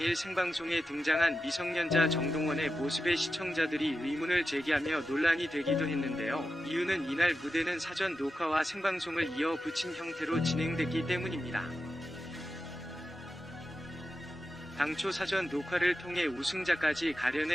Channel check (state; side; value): normal; both; correlation 0.91